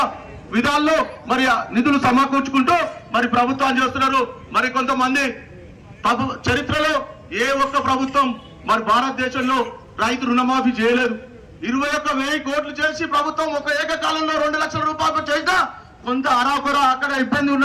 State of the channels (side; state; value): both; identical; correlation 1.00